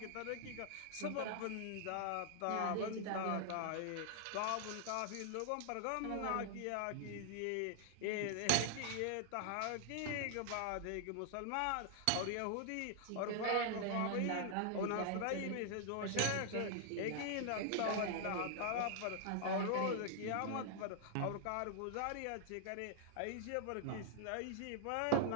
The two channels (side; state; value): both; different; correlation 0.00